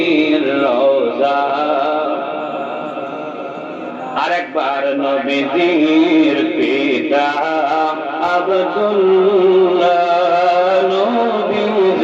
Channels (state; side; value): identical; both; correlation 1.00